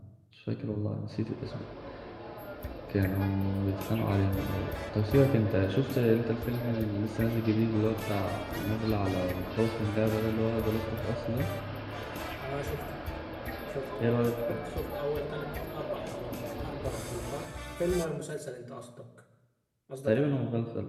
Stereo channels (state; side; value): identical; both; correlation 1.00